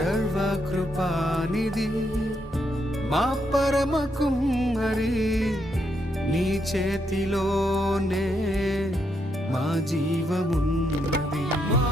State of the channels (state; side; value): normal; both; correlation 0.79